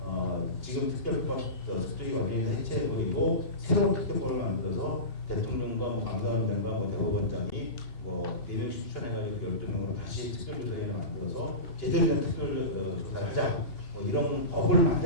지금 특별법 특조위가 완전히 해체해버리고 새로운 특별법을 만들어서 대통령과 감사원장과 대법원장이 대명씩 추천해가지고 12명으로 다시 특별조사위원회 만들어서 제대로 된 특별조사를 하자, 이런 법을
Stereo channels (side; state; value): right; late; 2.8 ms